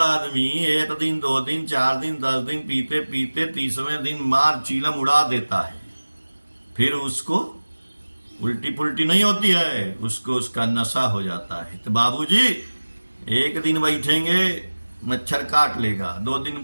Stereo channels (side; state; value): both; inverted; correlation -1.00